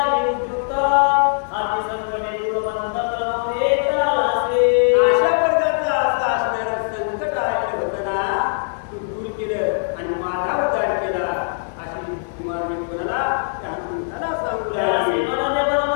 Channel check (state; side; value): silent; right; digital silence